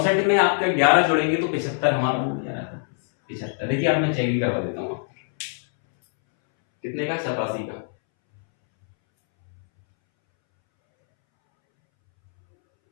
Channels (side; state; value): right; silent; 63 dB below the other